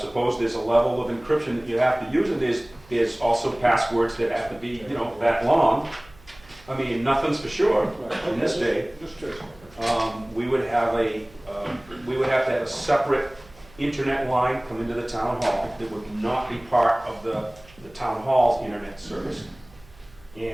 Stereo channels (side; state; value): right; noise; hum, 25 dB below the sound